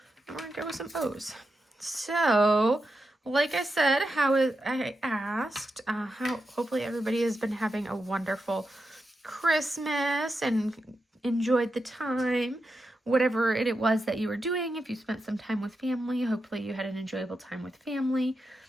We're going to go with some O's. So, like I said, I asked, hopefully everybody has been having a wonderful Christmas and enjoyed the time. Whatever it was that you were doing, if you spent some time with family, hopefully you had an enjoyable time with family.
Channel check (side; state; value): both; normal; correlation 0.88